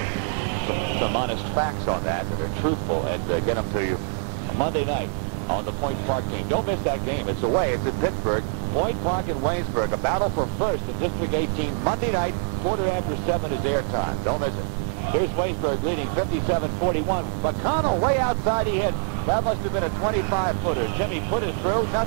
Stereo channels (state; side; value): silent; left; digital silence